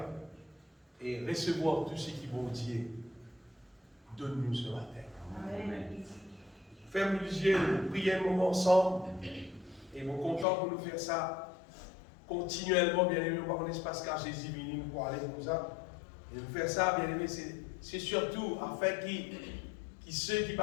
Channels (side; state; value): right; drops out; at 10.5 s